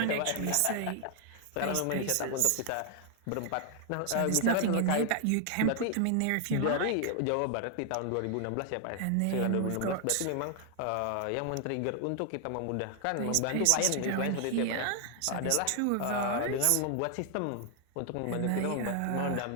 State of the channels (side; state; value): both; different; correlation 0.00